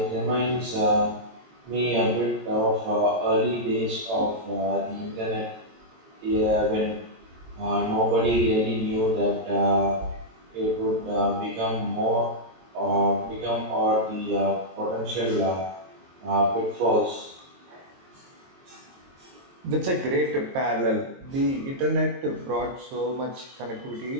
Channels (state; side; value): late; left; 22 ms